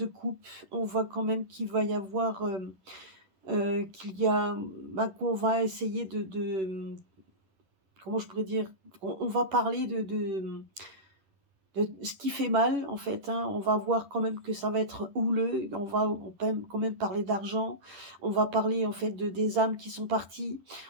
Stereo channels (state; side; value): late; left; 11 ms